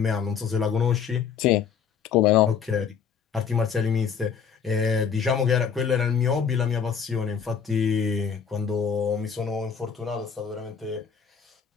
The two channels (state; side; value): quieter; right; 7.0 dB